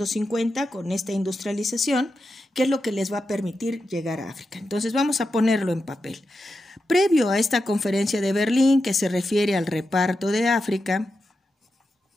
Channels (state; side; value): normal; both; correlation 0.89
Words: con esta industrialización, que es lo que les va a permitir llegar a África. Entonces vamos a ponerlo en papel. Previo a esta conferencia de Berlín, que se refiere al reparto de África,